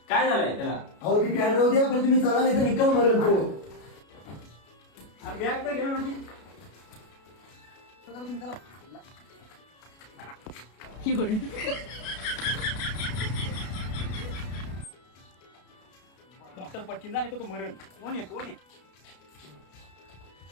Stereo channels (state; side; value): late; right; 33 ms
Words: काय झालंय त्याला? अहो ती कॅन राहू द्या पण तुम्ही चला नाही तर निकाल मरेल तो. बॅग तर घे म्हणजे डॉक्टर पटकीन झाले तर तू मरण. कोण आहे कोण आहे?